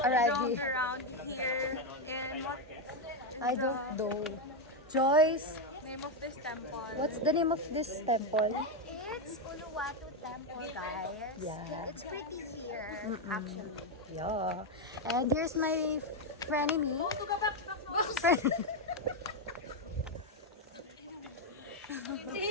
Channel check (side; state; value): both; normal; correlation 0.04